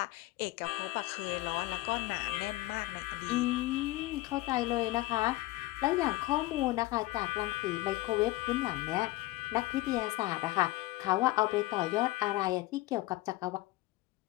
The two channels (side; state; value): right; quieter; 18.9 dB